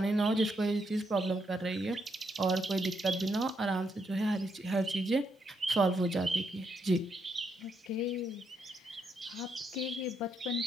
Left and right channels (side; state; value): both; normal; correlation 0.78